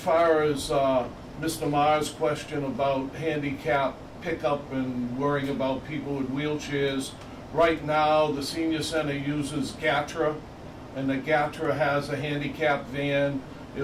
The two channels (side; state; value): both; identical; correlation 1.00